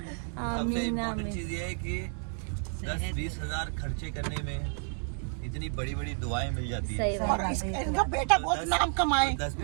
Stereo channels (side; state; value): left; silent; 57 dB below the other